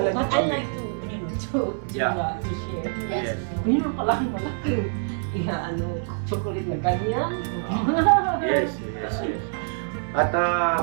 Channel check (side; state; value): left; silent; 61 dB below the other